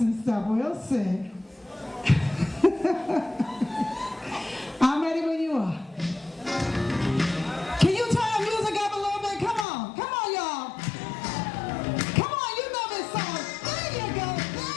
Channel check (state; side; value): drops out; right; at 9.7 s